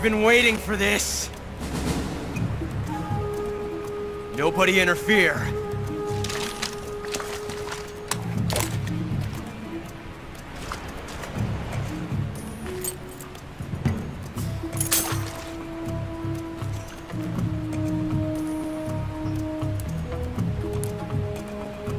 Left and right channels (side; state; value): both; identical; correlation 1.00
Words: been waiting for this. Nobody interfere.